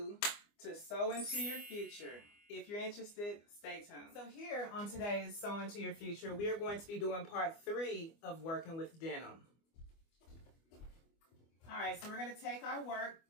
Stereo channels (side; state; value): right; late; 24 ms